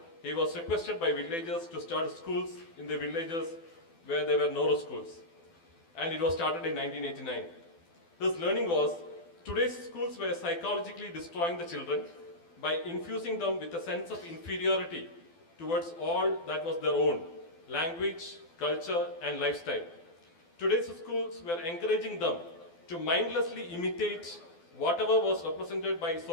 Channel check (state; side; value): late; right; 12 ms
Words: he was requested by villagers to start schools in the villages where there were no schools. And it was started in 1989. His learning was, today's schools were psychologically destroying the children by infusing them with a sense of inferiority towards all that was their own, language, culture, and lifestyle. Today's schools were encouraging them to mindlessly imitate whatever was represented by